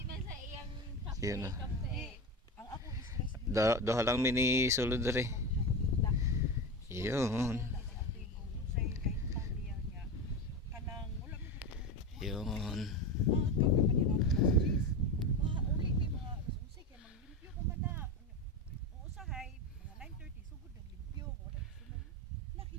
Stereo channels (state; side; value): normal; both; correlation 0.22